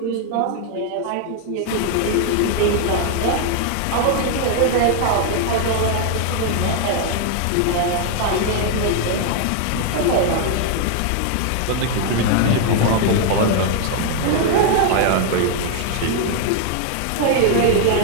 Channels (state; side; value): different; both; correlation 0.00